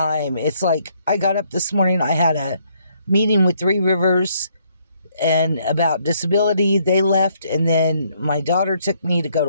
It's like I got up this morning, I had a meeting with Three Rivers and about disability. They left, and then my daughter took me to go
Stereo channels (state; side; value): inverted; both; correlation -0.70